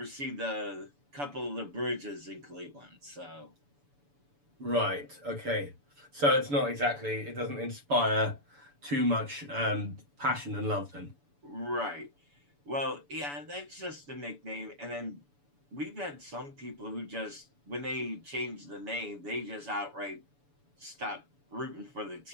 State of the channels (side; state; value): left; late; 7.0 ms